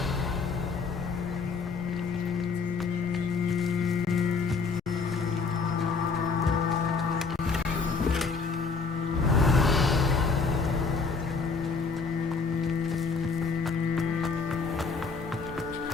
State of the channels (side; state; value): right; quieter; 4.7 dB